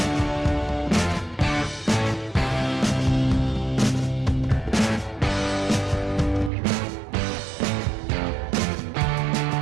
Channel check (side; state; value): left; drops out; at 6.5 s